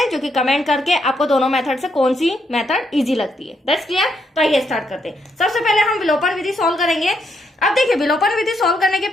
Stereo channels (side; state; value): both; normal; correlation 0.77